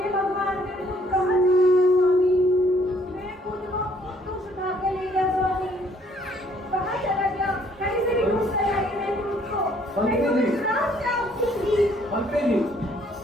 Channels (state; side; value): normal; both; correlation 0.63